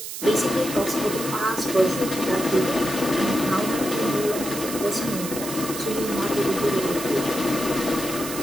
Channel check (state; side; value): noise; right; hiss, 8 dB below the sound